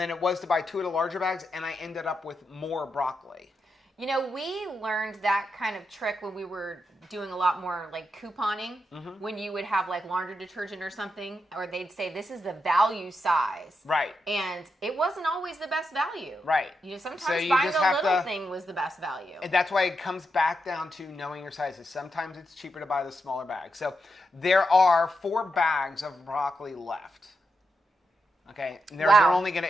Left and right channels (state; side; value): normal; both; correlation 0.85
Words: it was to buy 2 of the larger bags, and I ended up with more broccoli. You know, we learned that kind of trick when we were doing a lot more like couponing, when you would have like laundry detergent or something, or they'd say this is the value size. Right. And it wasn't always the best value. Right. Sometimes So you buying just the have little to- thing was the best value. And that's why it comes back down to knowing your sizes. Sometimes it's cheaper to buy the smaller bag. So there are 4 bags of broccoli left. Okay. And they're only gonna